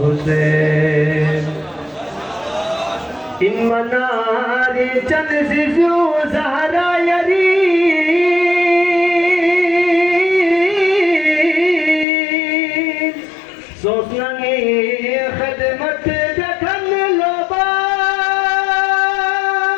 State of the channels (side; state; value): right; drops out; at 12.1 s